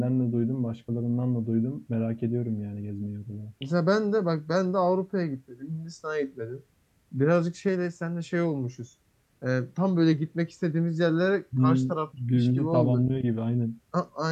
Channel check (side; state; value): both; identical; correlation 1.00